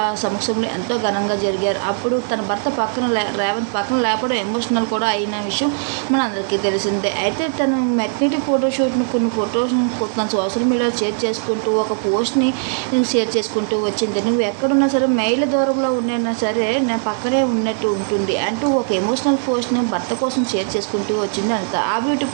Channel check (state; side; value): silent; left; digital silence